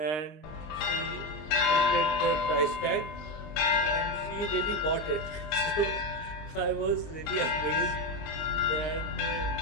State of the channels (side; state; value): right; late; 19 ms